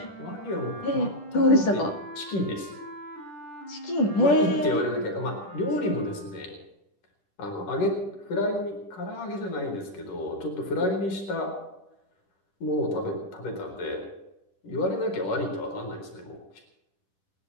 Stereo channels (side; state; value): right; late; 10 ms